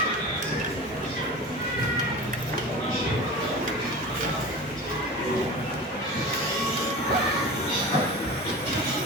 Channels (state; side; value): normal; both; correlation 0.33